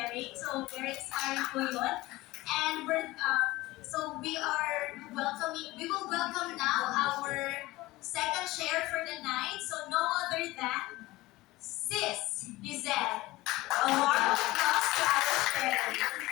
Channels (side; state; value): right; quieter; 19.1 dB